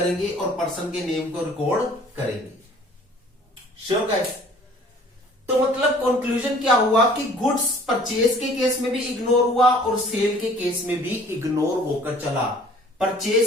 और पर्सन के नेम को रिकॉर्ड करेंगे। Sure guys. तो मतलब कंक्लूजन क्या हुआ कि गुड्स परचेज के केस में भी इग्नोर हुआ और सेल के केस में भी इग्नोर होकर चला।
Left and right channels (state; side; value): normal; both; correlation 0.52